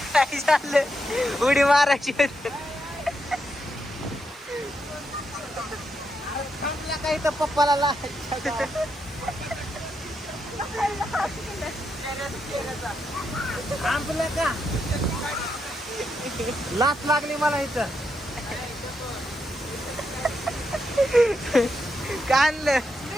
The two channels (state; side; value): normal; both; correlation 0.82